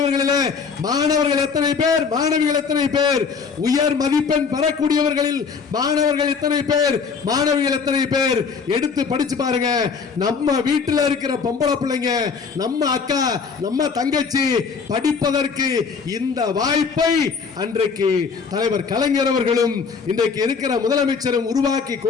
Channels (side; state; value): right; quieter; 5.5 dB